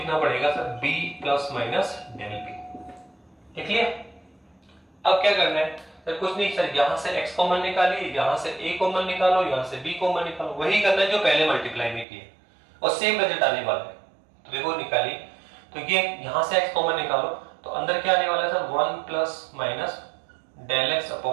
पड़ेगा sir b plus minus del b। ठीक है। अब क्या करना है सर, कुछ नहीं सर, यहां से x कॉमन निकालिए, यहां से a कॉमन निकालो, यहां से b कॉमन निकालो, वही करना है जो पहले मल्टीप्लाई में किया और सेम रिजल्ट आने वाला है। तो देखो निकालिए, तो ये यहां से x कॉमन निकालो तो अंदर क्या आने वाला है sir 1 plus minus del x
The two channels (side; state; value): left; drops out; at 12.1 s